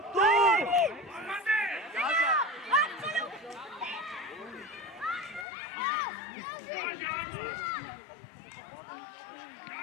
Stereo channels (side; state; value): right; drops out; at 5.5 s